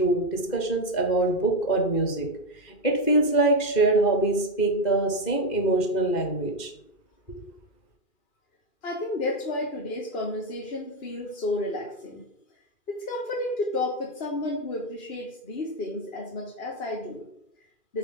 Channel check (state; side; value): late; right; 2.4 ms